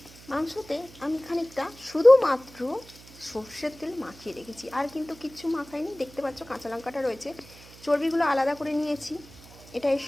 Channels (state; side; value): noise; right; hum, 21 dB below the sound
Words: মাংসতে আমি খানিকটা শুধুমাত্র সর্ষের তেল মাখিয়ে রেখেছি, আর কিন্তু কিচ্ছু মাখাইনি। দেখতে পাচ্ছ কাঁচা লঙ্কাটা রয়েছে, চর্বিগুলো আলাদা করে নিয়েছি, এটা এর